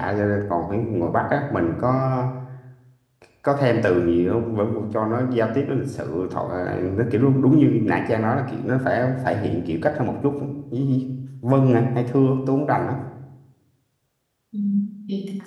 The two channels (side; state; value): both; identical; correlation 1.00